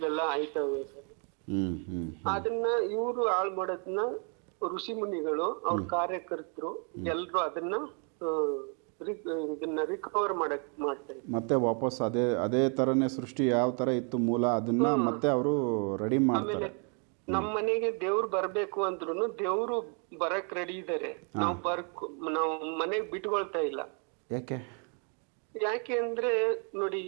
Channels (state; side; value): quieter; left; 39.2 dB